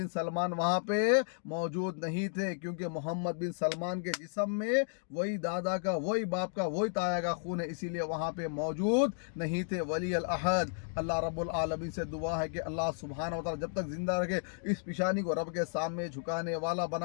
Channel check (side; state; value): right; silent; digital silence